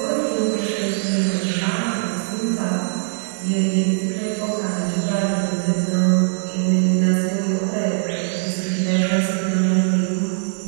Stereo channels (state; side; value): silent; left; 61 dB below the other